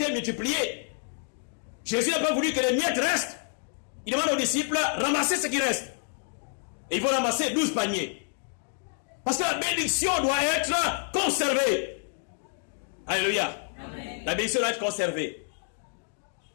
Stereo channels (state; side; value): silent; right; 59 dB below the other